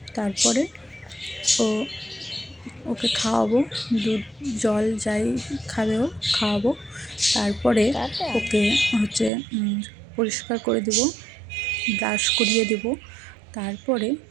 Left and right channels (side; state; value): left; drops out; at 9.3 s